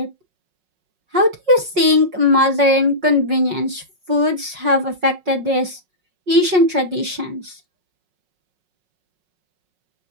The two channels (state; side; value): late; left; 5.4 ms